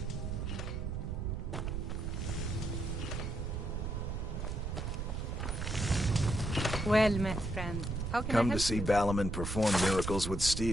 Well met, friend. How can I Come help to see you? Balaman perform miracles with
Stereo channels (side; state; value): right; noise; rumble, 3 dB below the sound